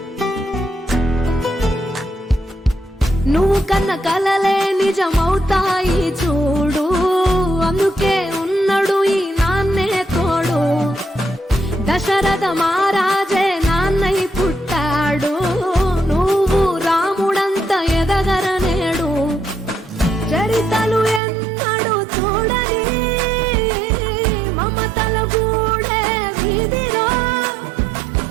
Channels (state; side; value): drops out; left; at 21.2 s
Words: నువ్వు కన్న కలలే నిజమవుతాయి చూడు అందుకే ఉన్నాడు ఈ నాన్నే తోడు దశరథ మహారాజే నాన్నై పుట్టాడు నువ్వు రాముడంత ఎదగరనేడు చరితలు ఎన్నడు చూడని మమతల గూడే వీధిరో